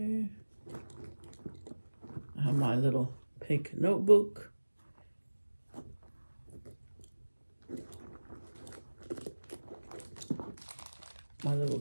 I have my little pink notebook. My little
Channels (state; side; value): inverted; both; correlation -1.00